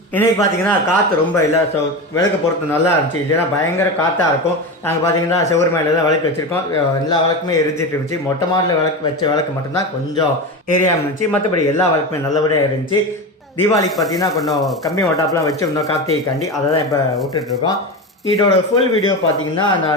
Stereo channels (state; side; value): normal; both; correlation 0.22